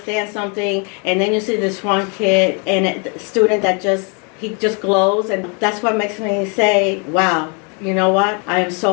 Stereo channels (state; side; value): quieter; right; 35.3 dB